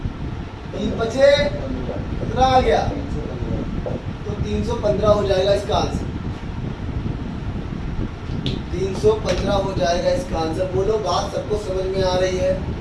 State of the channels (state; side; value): identical; both; correlation 1.00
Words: 3 बचे, कितना आ गया, तो 315 हो जाएगा इसका आंसर। 315 हो जाएगा इसका आंसर। बोलो बात सबको समझ में आ रही है,